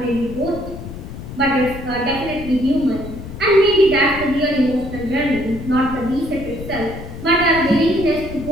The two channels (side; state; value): left; noise; rumble, 11 dB below the sound